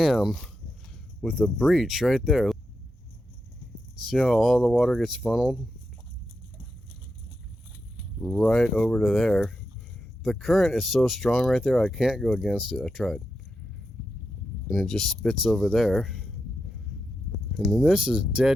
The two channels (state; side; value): normal; both; correlation 0.87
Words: with a breach right there. See how all the water gets funneled right over to there. The current is so strong right there, I can't go against it. I tried. And it just spits over there. And then this is